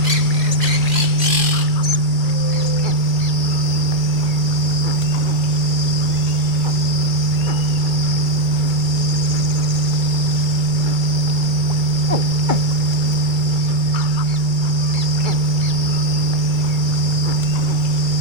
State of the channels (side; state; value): left; late; 2.3 ms